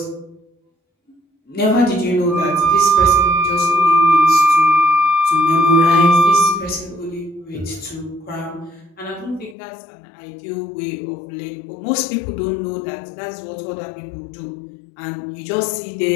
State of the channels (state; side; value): drops out; right; at 9.6 s